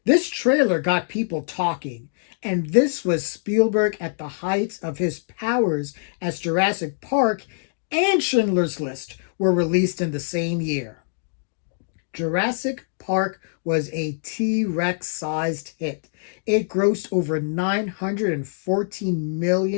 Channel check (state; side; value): silent; right; digital silence